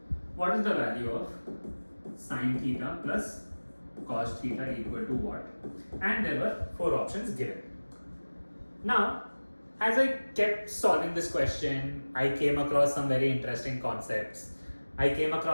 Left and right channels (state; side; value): inverted; both; correlation -1.00